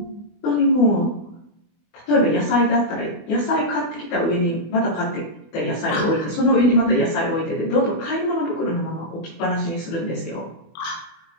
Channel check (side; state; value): right; late; 24 ms